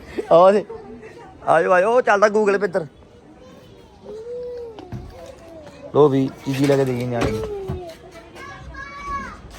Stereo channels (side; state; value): both; identical; correlation 1.00